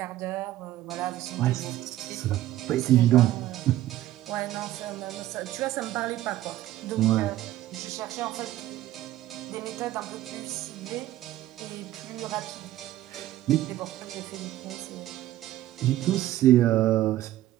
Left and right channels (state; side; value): quieter; left; 14.3 dB